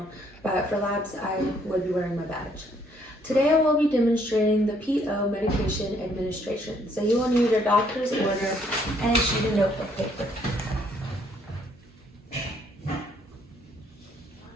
But for labs, I would be wearing my badge. Today I will be demonstrating the PO medication administration. So you will need your doctor's order and a sheet of notebook paper.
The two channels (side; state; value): both; normal; correlation 0.67